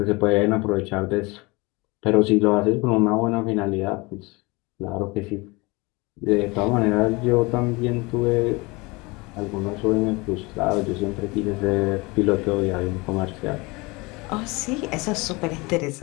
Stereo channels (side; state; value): right; quieter; 25.2 dB